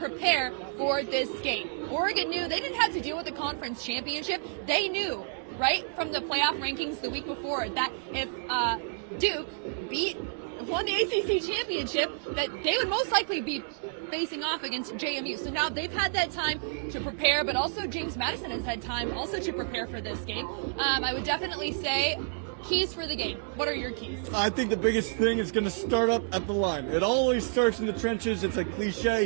for this game. Oregon knew they didn't have to deal with the conference championship. They knew right from the playoff rankings the week before that if Duke beat won the ACC championship, that they would most likely be facing off against JMU. So now they've had that time to prepare, but also James Madison has had time also to prepare for this game. I would definitely say keys for the game. What are your keys? I think the biggest thing is going to start up at the line. It always starts in the trenches. It's a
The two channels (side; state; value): left; silent; digital silence